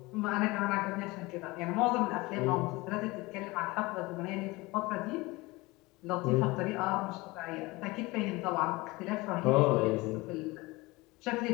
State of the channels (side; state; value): right; quieter; 22.4 dB